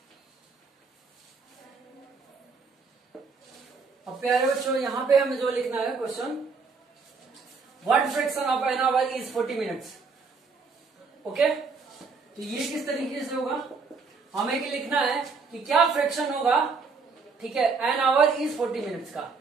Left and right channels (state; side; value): quieter; left; 4.8 dB